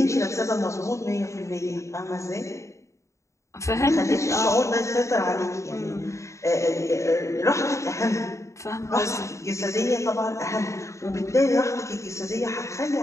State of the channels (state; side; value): late; right; 0.14 ms